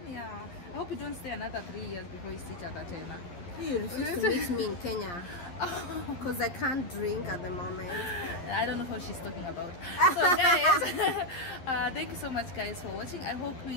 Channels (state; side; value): late; right; 11 ms